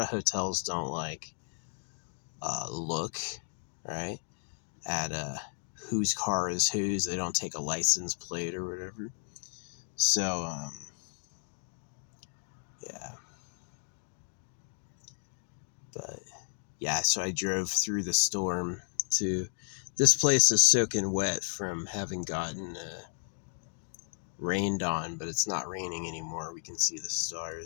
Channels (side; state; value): right; silent; 56 dB below the other